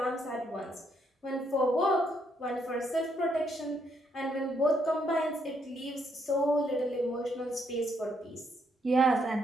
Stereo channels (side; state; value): both; normal; correlation 0.73